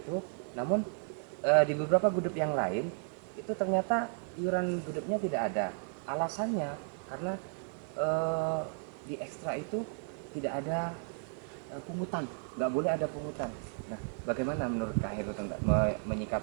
namun di beberapa gudeg yang lain itu ternyata iuran gudegnya tidak ada. Alasannya karena di ekstra itu tidak ada pungutan, nggak boleh ada pungutan. Nah, bagaimana menurut Kak Heru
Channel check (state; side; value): silent; left; 55 dB below the other